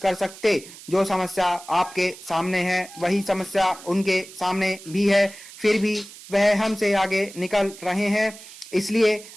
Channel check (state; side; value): noise; right; hiss, 17 dB below the sound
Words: सकते? जो समस्या आपके सामने है वही समस्या उनके सामने भी है, फिर भी वह हमसे आगे निकल रहे हैं। इसलिए